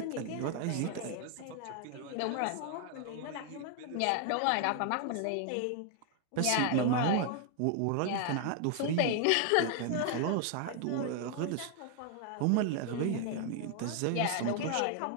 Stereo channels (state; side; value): different; both; correlation 0.00